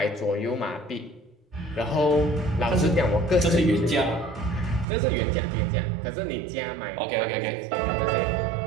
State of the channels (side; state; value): left; drops out; at 4.9 s